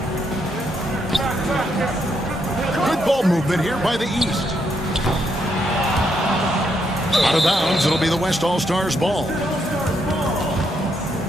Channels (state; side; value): normal; both; correlation 0.77